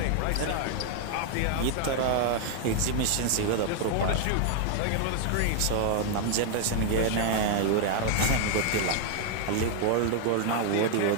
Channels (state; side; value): different; both; correlation 0.00